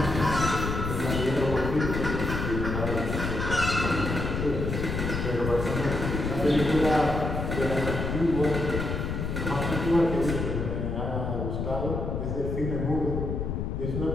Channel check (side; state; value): left; noise; rumble, 2 dB below the sound